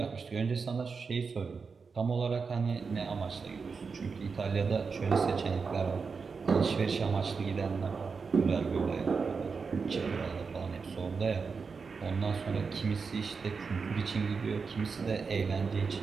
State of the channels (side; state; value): left; quieter; 5.1 dB